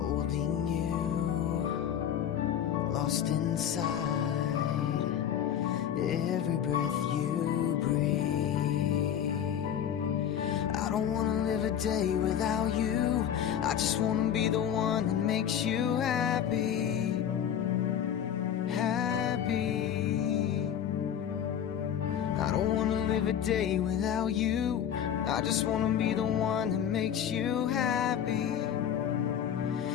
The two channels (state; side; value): quieter; right; 9.3 dB